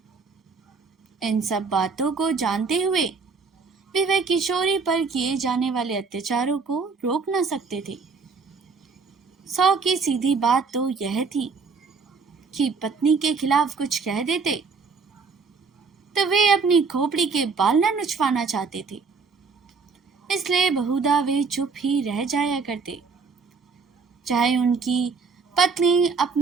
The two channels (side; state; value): left; quieter; 4.9 dB